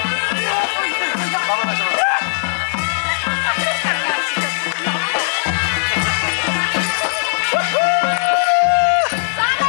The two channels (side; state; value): right; silent; 61 dB below the other